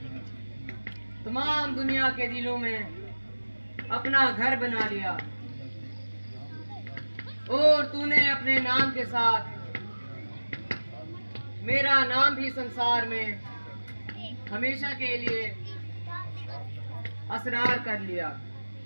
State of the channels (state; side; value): inverted; both; correlation -1.00